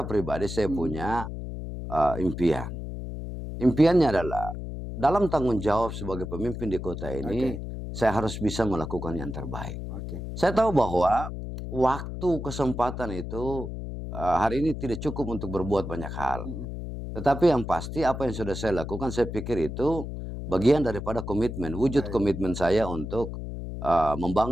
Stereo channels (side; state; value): left; noise; hum, 7 dB below the sound